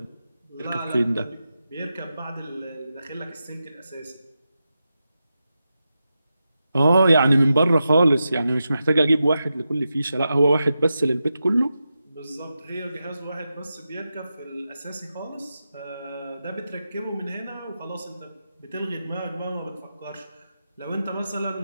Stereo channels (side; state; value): both; inverted; correlation -0.90